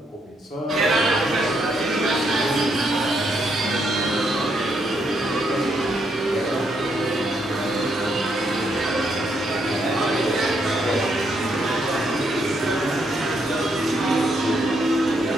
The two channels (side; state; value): both; normal; correlation 0.76